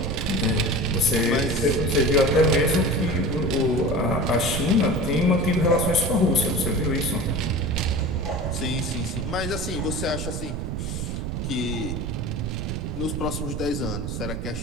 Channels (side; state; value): right; noise; rumble, 4 dB below the sound